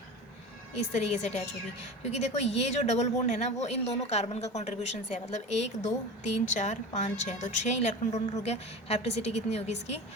इस तरीके से अटैच होगी। क्योंकि देखो ये जो डबल बॉन्ड है ना, वो इन दोनों कार्बन का कॉन्ट्रीब्यूशन से है, मतलब 1 2 3 4 5 6, तो 6 इलेक्ट्रॉन डोनर हो गया। हैप्टिसिटी कितनी होगी इसकी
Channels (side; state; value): both; normal; correlation 0.31